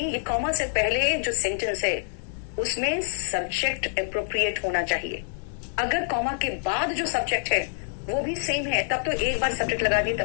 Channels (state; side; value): silent; right; 61 dB below the other